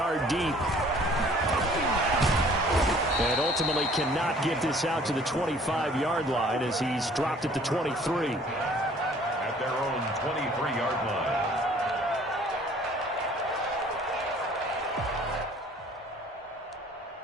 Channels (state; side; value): normal; both; correlation 0.54